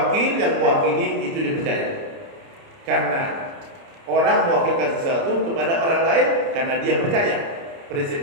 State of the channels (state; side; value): late; left; 30 ms